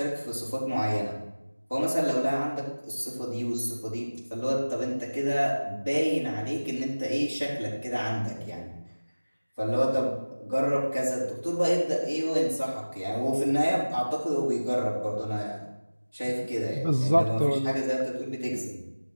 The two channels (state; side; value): inverted; both; correlation -1.00